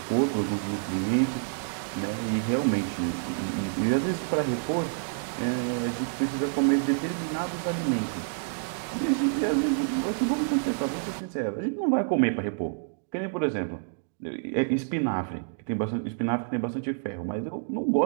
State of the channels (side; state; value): left; silent; digital silence